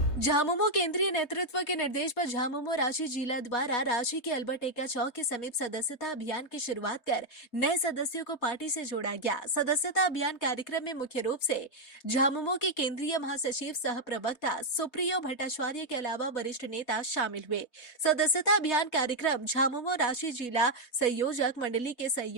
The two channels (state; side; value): late; right; 3.2 ms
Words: झामुमो केंद्रीय नेतृत्व के निर्देश पर झामुमो रांची जिला द्वारा रांची के अल्बर्ट एक्का चौक के समीप सदस्यता अभियान की शुरुआत कर नए सदस्यों को पार्टी से जोड़ा गया। सदस्यता अभियान कार्यक्रम में मुख्य रूप से झामुमो के केंद्रीय महासचिव सह प्रवक्ता सुप्रियो भट्टाचार्य के अलावा वरिष्ठ नेता शामिल हुए। सदस्यता अभियान कार्यक्रम झामुमो रांची जिला संयोजक मंडली के